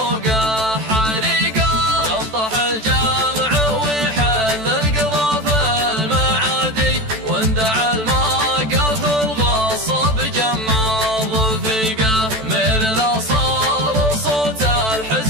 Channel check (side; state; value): left; late; 14 ms